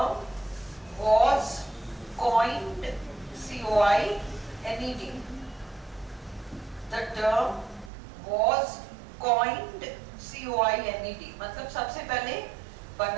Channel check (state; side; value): drops out; left; at 7.9 s